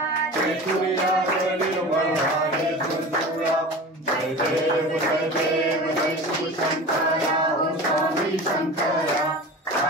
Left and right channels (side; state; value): both; normal; correlation 0.34